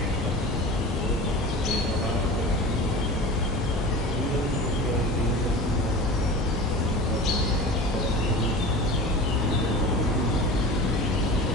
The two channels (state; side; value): normal; both; correlation 0.35